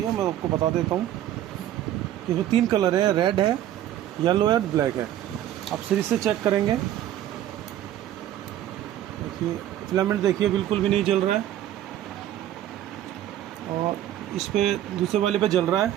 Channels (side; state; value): left; quieter; 12.2 dB